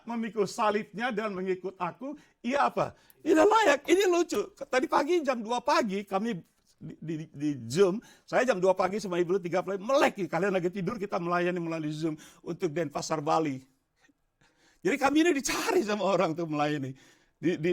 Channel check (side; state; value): both; identical; correlation 1.00